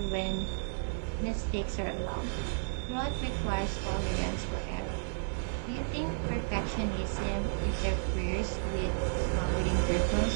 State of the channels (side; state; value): left; silent; 56 dB below the other